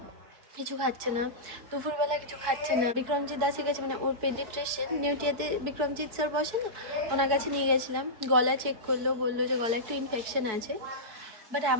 কিছু খাচ্ছে না, দুপুরবেলা কিছু খাচ্ছে না। বিক্রমজিৎ দাসের কাছে, মানে ওর পেডিয়াট্রিশিয়ান নিউটিয়াতে বিক্রমজিৎ স্যার বসে না, ওনার কাছে নিয়ে গেছিলাম। গলা চেক করলো, বললো যে গলা একটু ইনফেকশন আছে, বাট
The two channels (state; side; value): late; left; 4.6 ms